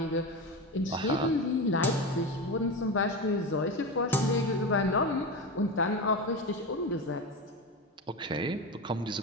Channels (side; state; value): both; normal; correlation 0.21